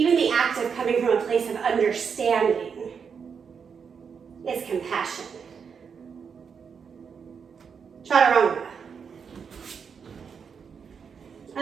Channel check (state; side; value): quieter; left; 6.4 dB